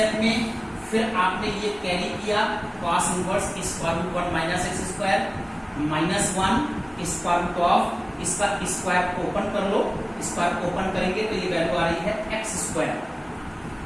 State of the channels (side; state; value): both; identical; correlation 1.00